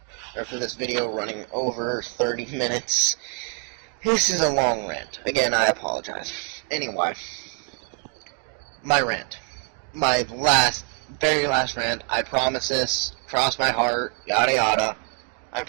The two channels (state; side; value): quieter; left; 39.4 dB